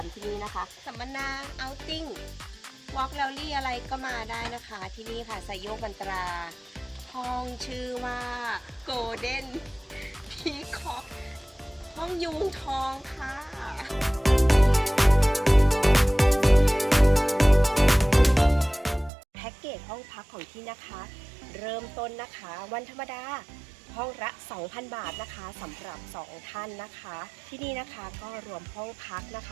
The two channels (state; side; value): drops out; left; at 19.1 s